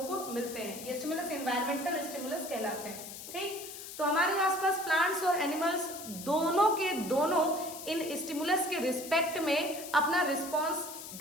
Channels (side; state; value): left; noise; hiss, 11 dB below the sound